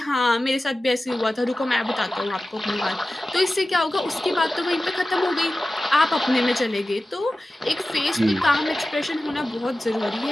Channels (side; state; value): both; normal; correlation 0.95